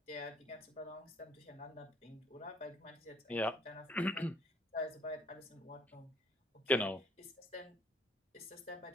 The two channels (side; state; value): both; normal; correlation 0.60